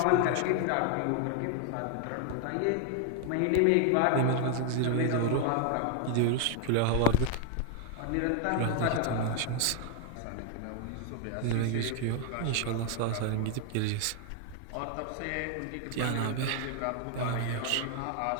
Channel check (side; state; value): both; different; correlation 0.00